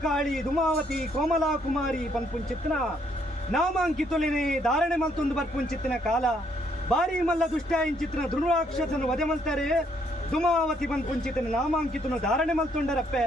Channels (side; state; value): both; normal; correlation 0.70